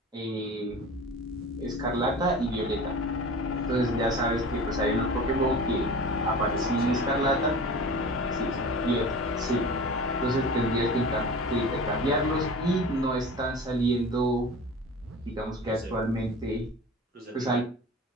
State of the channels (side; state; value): both; normal; correlation 0.36